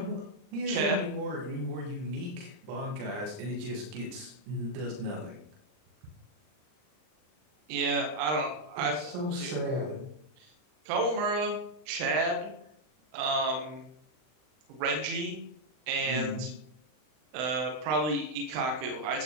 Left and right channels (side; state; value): left; late; 39 ms